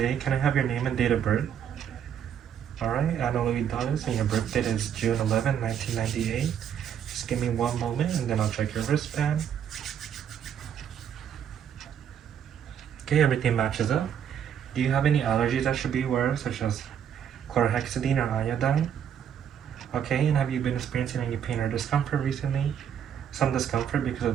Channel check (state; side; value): quieter; left; 8.8 dB